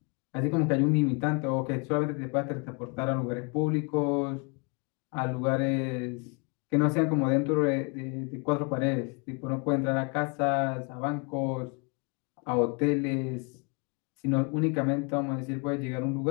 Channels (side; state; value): right; quieter; 33.0 dB